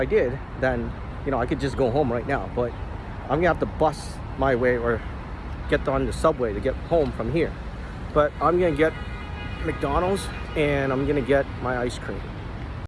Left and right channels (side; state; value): both; identical; correlation 1.00